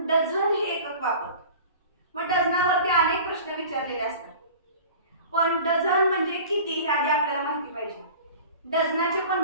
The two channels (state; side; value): inverted; both; correlation -0.41